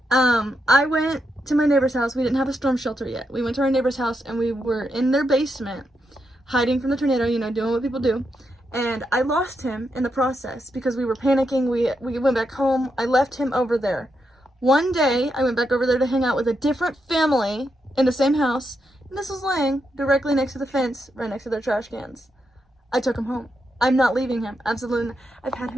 I went to my neighbor's house. We didn't have a storm shelter yet. We went to our neighbor's house and we were in their basement, hiding from the tornado, you know, doing what people do. And I lost him in the process because we were panicking. We went back home. I left him over there. One day, I went back over there to hang out with a different family in the same house, and this was laying directly next to the fence, right next to their trash cans. I took him home. I'm not leaving him. Absolutely not. I've had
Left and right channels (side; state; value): both; normal; correlation 0.83